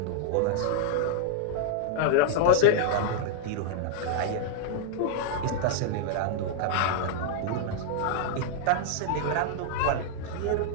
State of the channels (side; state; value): both; different; correlation 0.00